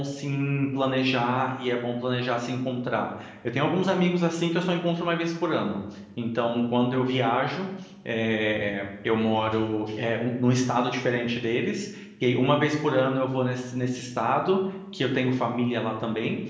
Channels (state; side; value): identical; both; correlation 1.00